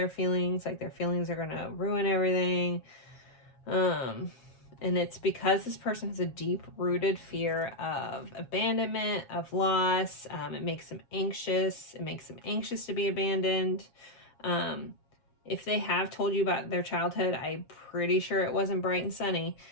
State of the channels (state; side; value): late; right; 7.4 ms